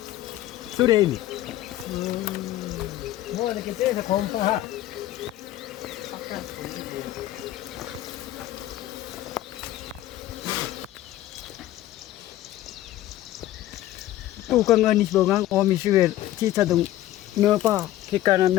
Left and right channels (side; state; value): right; quieter; 14.4 dB